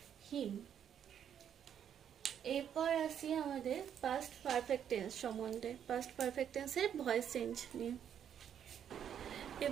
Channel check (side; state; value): left; quieter; 9.0 dB